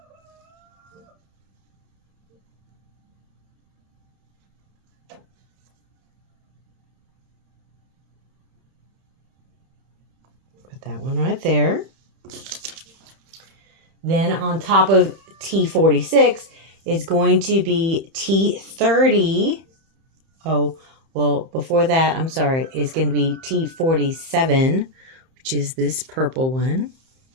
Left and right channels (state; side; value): late; left; 30 ms